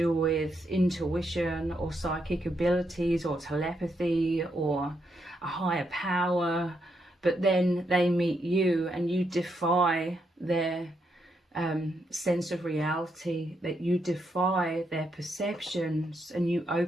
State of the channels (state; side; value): normal; both; correlation 0.79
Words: with intuition or psychic abilities or telepathy or a higher power, but then they meet you and you defy their sense of reality, that you defy their perceptions and you